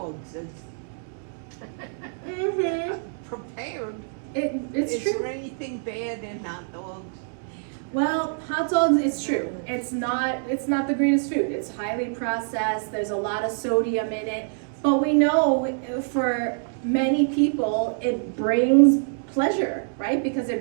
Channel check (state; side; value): silent; left; digital silence